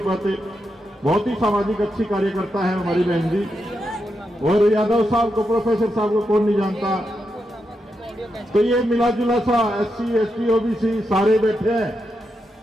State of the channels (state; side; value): normal; both; correlation 0.85